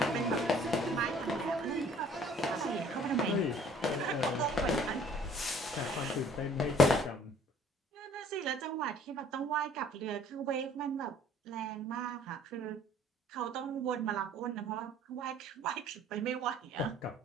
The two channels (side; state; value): both; normal; correlation 0.55